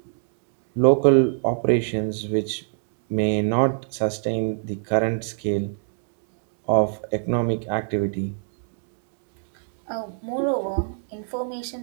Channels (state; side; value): silent; left; digital silence